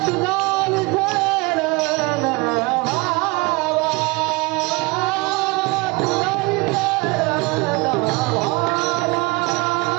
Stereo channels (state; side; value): quieter; left; 25.6 dB